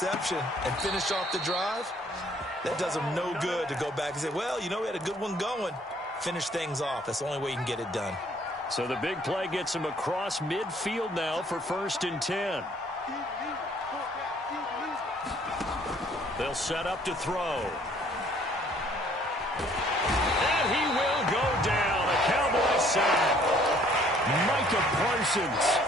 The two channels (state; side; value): normal; both; correlation 0.60